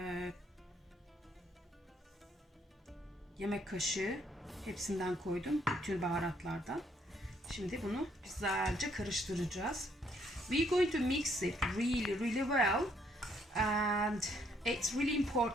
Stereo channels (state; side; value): normal; both; correlation 0.69